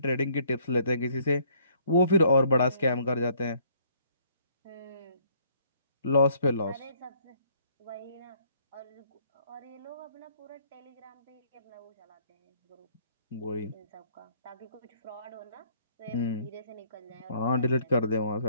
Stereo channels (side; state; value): both; inverted; correlation -0.63